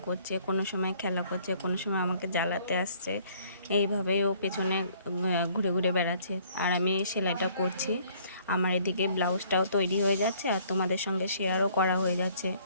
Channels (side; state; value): both; inverted; correlation -0.60